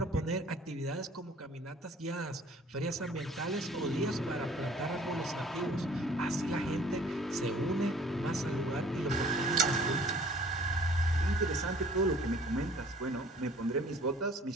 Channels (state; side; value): normal; both; correlation 0.52